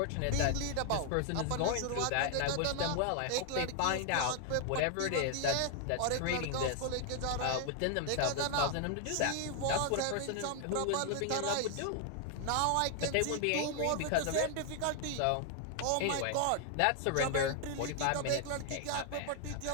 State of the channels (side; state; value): both; different; correlation 0.00